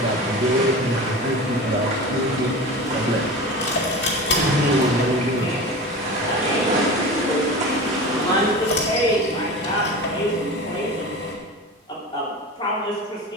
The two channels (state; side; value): normal; both; correlation 0.31